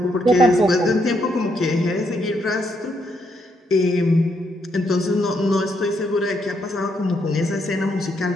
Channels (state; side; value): normal; both; correlation 0.76